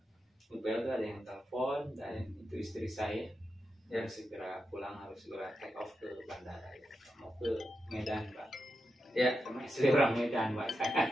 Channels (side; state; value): both; normal; correlation 0.88